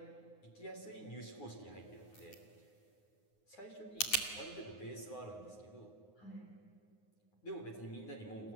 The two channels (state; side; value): late; right; 9.6 ms